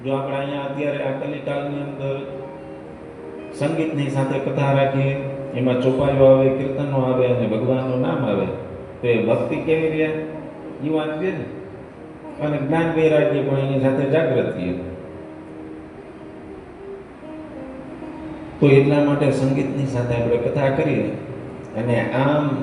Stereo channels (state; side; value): identical; both; correlation 1.00